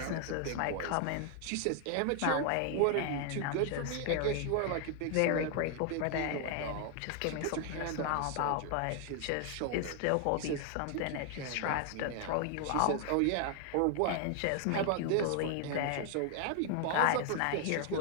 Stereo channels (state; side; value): different; both; correlation 0.00